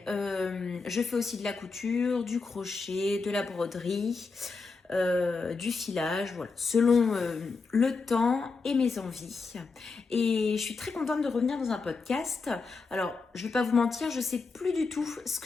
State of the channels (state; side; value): quieter; right; 4.4 dB